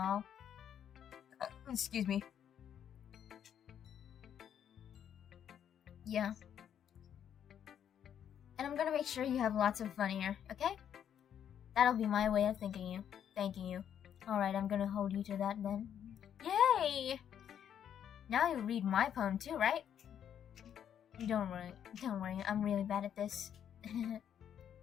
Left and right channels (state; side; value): quieter; right; 9.2 dB